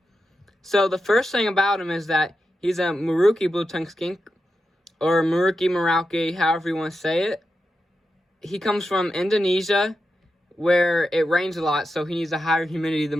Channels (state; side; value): normal; both; correlation 0.89